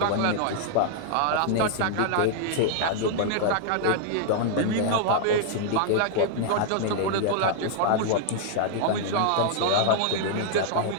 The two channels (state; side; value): different; both; correlation -0.01